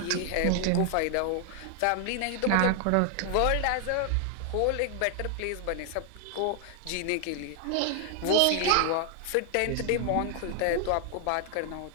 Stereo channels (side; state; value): both; different; correlation 0.00